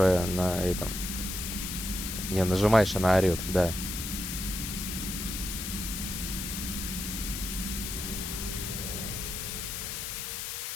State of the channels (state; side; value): noise; left; hiss, 4 dB below the sound